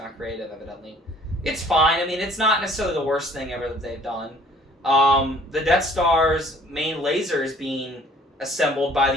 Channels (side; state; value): both; normal; correlation 0.55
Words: creative, evidently. It's fine. It's not necessarily the worst thing ever that they've done. The Death Star's main laser is being assembled by